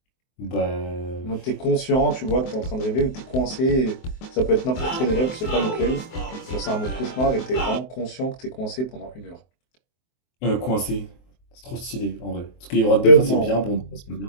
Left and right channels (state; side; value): late; right; 23 ms